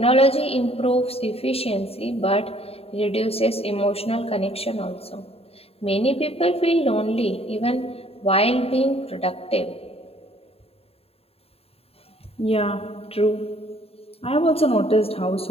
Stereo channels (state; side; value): late; right; 0.28 ms